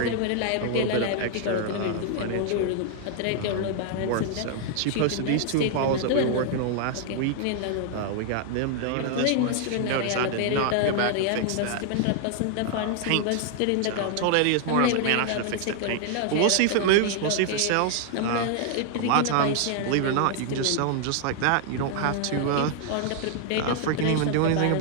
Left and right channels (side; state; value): both; different; correlation 0.00